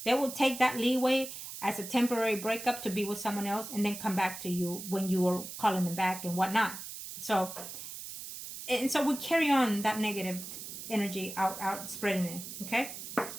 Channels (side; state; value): right; noise; hiss, 10 dB below the sound